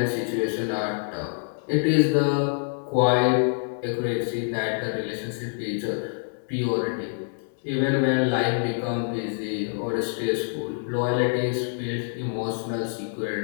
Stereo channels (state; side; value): silent; right; digital silence